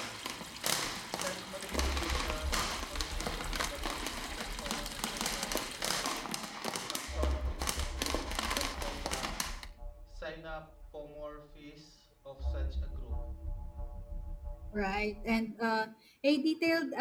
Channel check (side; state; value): both; identical; correlation 1.00